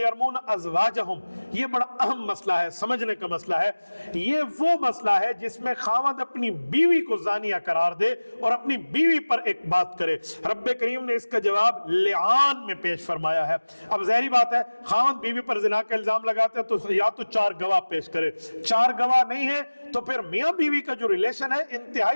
अज़वाजहुम, ये बड़ा अहम मसला है, समझने का मसला है। ये वो मसला है जिसमें खावंद अपनी बीवी को जानिया करार दे और अपनी बीवी पर एक बात करे। रब्बे करीम ने इसका जवाब लिआन में पेश फरमाया है। अब ज़ाहिरी बात है खावंद बीवी पर जिना का इल्जाम लगाते हैं तो या तो 4 गवाह पेश करे, 4 गवाह नहीं है तो फिर मियां बीवी का जो रिलेशन है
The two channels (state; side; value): inverted; both; correlation -1.00